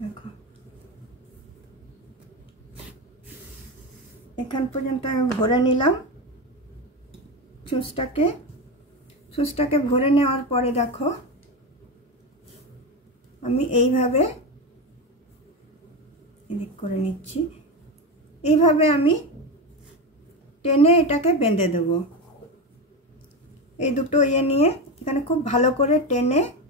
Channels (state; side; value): normal; both; correlation 0.18